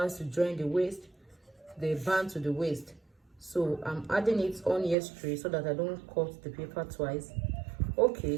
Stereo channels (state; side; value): drops out; left; at 5.0 s